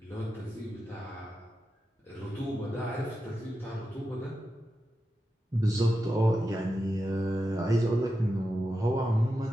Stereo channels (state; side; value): normal; both; correlation 0.90